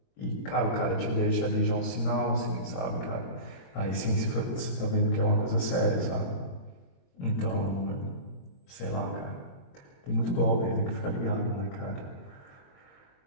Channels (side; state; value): right; late; 22 ms